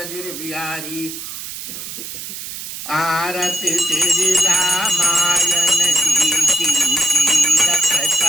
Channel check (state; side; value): noise; right; hiss, 9 dB below the sound